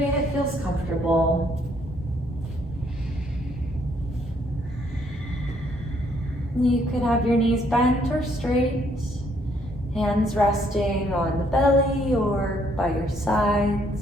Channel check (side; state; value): both; normal; correlation 0.68